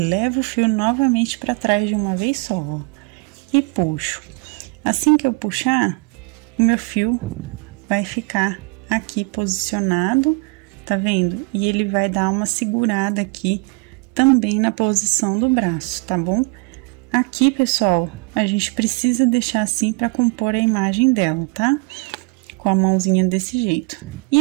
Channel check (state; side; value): quieter; left; 28.8 dB